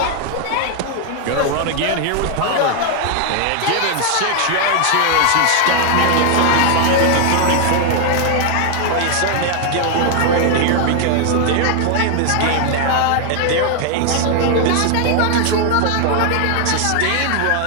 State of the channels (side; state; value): both; different; correlation 0.00